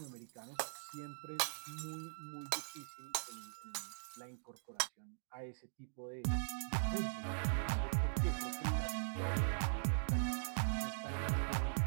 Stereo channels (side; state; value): left; silent; digital silence